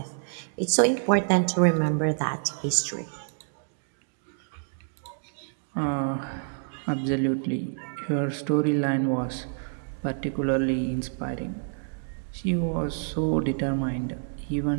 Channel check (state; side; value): silent; left; digital silence